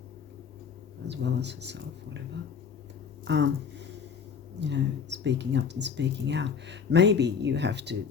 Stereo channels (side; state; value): right; quieter; 6.4 dB